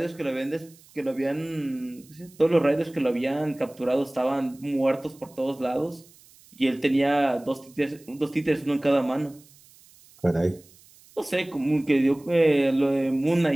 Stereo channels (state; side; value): noise; right; hiss, 26 dB below the sound